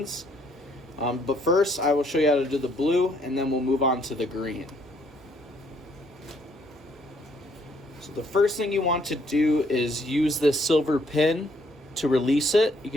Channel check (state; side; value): normal; both; correlation 0.68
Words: But first, I will show you how to do the blue, and then we'll move on to the green. So the first thing you want to do is use this silver pin to release it. You